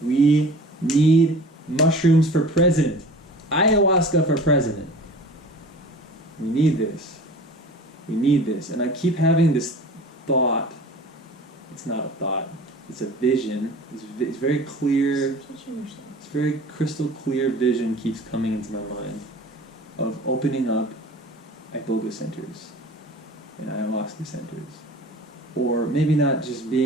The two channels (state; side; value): normal; both; correlation 0.42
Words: we need mushrooms for president. Ayahuasca for president. We need this. We need this. And I keep having this thought. It's not a thought. It's a vision. It's very clear. Stop touching yourself. It's very crystal clear vision keeps coming into my mind of opening up iboga centers and ayahuasca centers. Or maybe not just